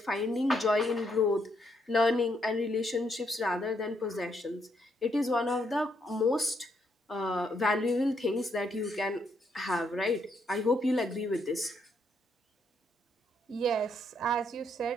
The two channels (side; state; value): both; normal; correlation 0.75